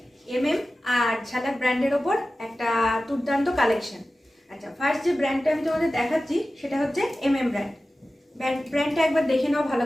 এমএম আর ঝালাক ব্র্যান্ডের ওপর একটা দুর্দান্ত কালেকশন। আচ্ছা, ফার্স্ট যে ব্র্যান্ডটা আমি তোমাদের দেখাচ্ছি সেটা হচ্ছে এমএম ব্র্যান্ড। ব্র্যান্ডটা একবার দেখে নাও ভালো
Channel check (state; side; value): normal; both; correlation 0.95